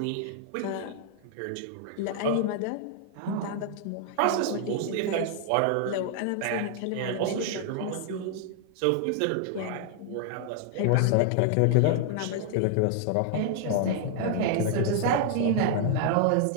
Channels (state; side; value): different; both; correlation 0.00